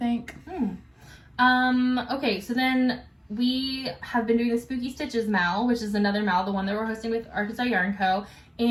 Okay, so then we have been doing the Spooky Stitches Mal, which is another Mal, the one that we're hosting with Arkansas Yarn Co.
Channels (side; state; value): both; identical; correlation 1.00